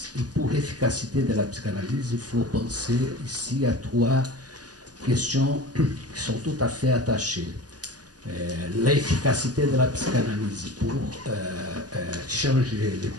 Et pour l'efficacité de la psychanalyse, il faut penser ici à trois questions qui sont tout à fait attachées. L'efficacité de la psychanalyse pour changer les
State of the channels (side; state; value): left; late; 0.68 ms